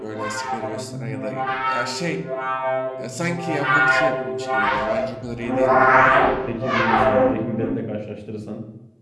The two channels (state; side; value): identical; both; correlation 1.00